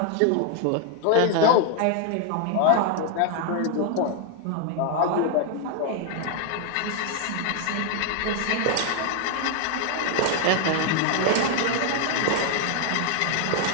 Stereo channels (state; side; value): different; both; correlation 0.01